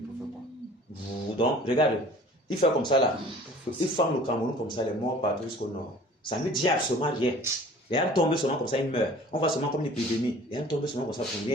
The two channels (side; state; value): both; normal; correlation 0.48